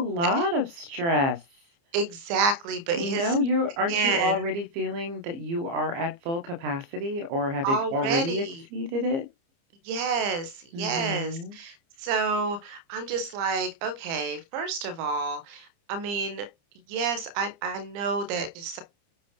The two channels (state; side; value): late; left; 29 ms